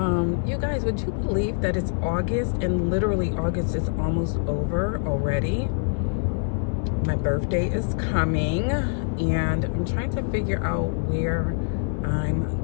You guys, would you believe that it's August and literally August is almost over already? My birthday is coming and I'm trying to figure out where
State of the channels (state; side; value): silent; right; 60 dB below the other